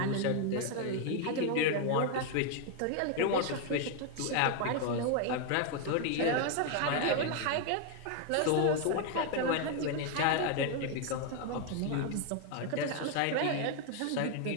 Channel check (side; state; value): both; different; correlation 0.00